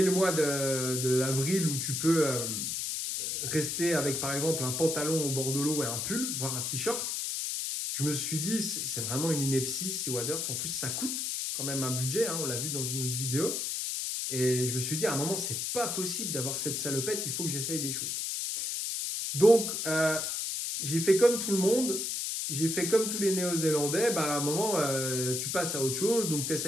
le mois d'avril où tu peux rester avec, par exemple, un pantalon au bord de l'eau et un pull, voire un t-shirt, je me suis dit, c'est vraiment une ineptie, ces waders. En plus, ça coûte quand même un budget, on l'a vu dans une autre vidéo. Et je me suis dit, à un moment, c'est pas possible d'avoir cette salopette, il faut que j'essaye des choses. Donc, j'ai fait comme tout le monde, j'ai fait comme tous les Néo-Zélandais. À un moment, tu passes à autre chose, donc tu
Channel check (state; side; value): noise; left; hiss, 1 dB below the sound